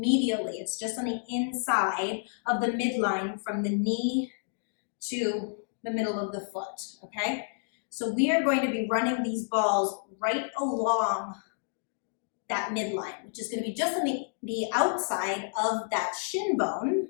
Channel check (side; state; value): right; silent; digital silence